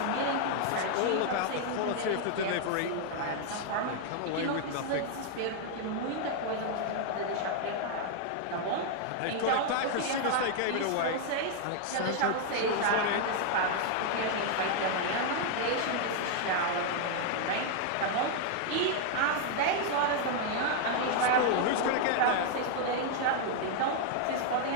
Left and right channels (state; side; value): different; both; correlation 0.00